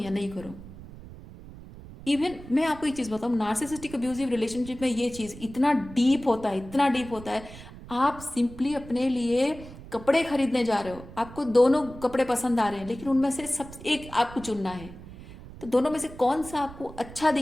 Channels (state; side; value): noise; right; rumble, 16 dB below the sound